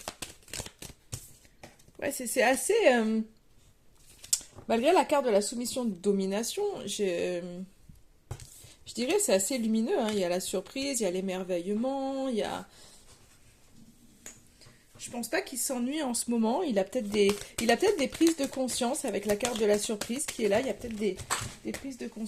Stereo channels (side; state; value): both; identical; correlation 1.00